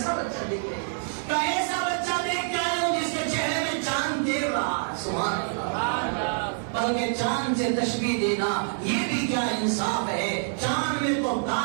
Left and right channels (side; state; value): left; silent; digital silence